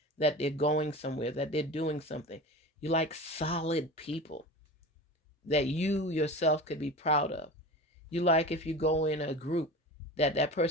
that they're going somewhere, that they're doing something. You like solid people that you yourself could be proud of. You like if you go in a group that that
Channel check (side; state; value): both; normal; correlation 0.32